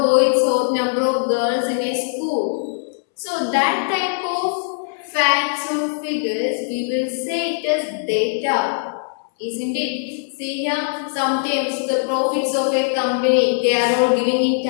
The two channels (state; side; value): silent; right; 65 dB below the other